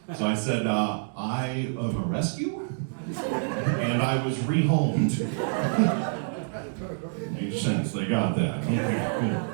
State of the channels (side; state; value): left; silent; digital silence